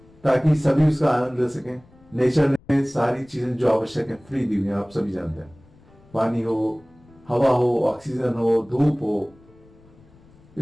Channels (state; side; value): noise; left; rumble, 27 dB below the sound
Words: ताकि सभी उसका आनंद ले सकें। नेचर ने सारी चीजें जो आवश्यक है फ्री दी हुई है, आप सभी जानते हैं। पानी हो, हवा हो, ऑक्सीजन हो, धूप हो,